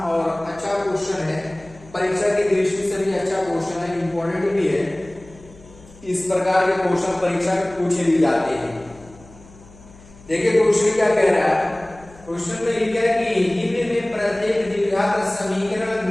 और अच्छा क्वेश्चन है, परीक्षा की दृष्टि से भी अच्छा क्वेश्चन है, इंपॉर्टेंट भी है। इस प्रकार के क्वेश्चन परीक्षा में पूछे भी जाते हैं। देखिए क्वेश्चन क्या कह रहा है। क्वेश्चन में लिखा है कि निम्न में प्रत्येक द्विघात समीकरण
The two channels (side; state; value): left; noise; hum, 23 dB below the sound